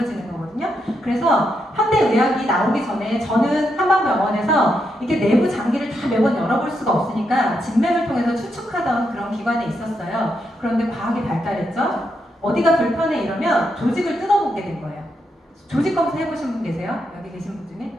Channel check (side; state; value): both; normal; correlation 0.81